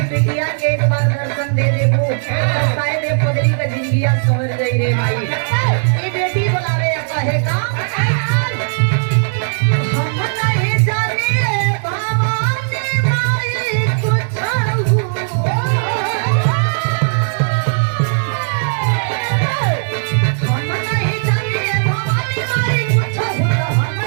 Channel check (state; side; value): silent; left; digital silence